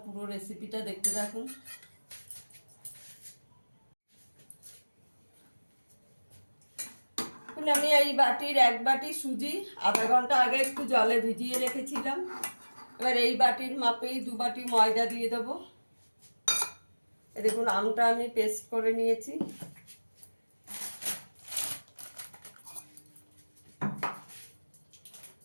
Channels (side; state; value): both; inverted; correlation -1.00